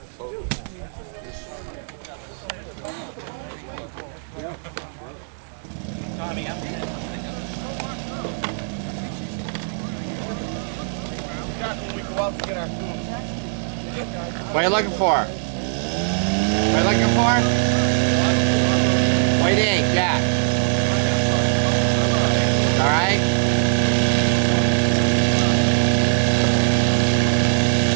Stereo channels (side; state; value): left; silent; 65 dB below the other